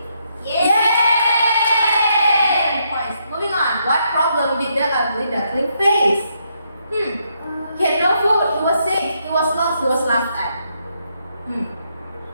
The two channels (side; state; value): both; inverted; correlation -0.77